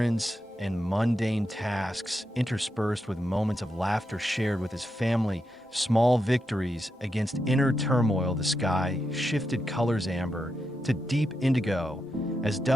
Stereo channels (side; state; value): both; normal; correlation 0.86